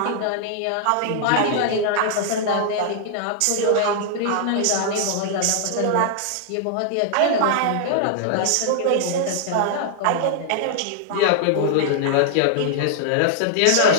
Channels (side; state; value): both; different; correlation -0.01